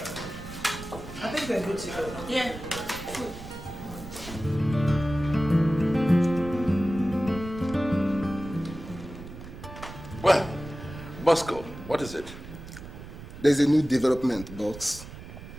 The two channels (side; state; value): right; noise; rumble, 13 dB below the sound